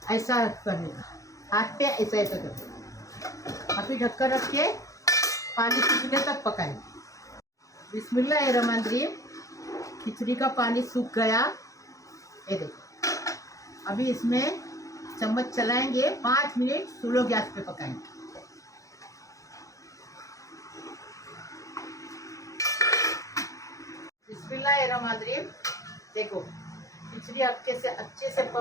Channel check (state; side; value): late; right; 0.16 ms